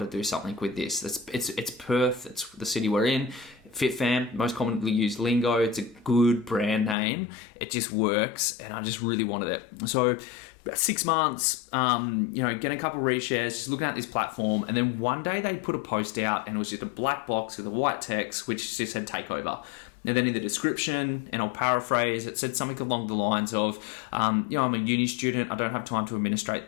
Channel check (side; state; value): right; drops out; at 7.0 s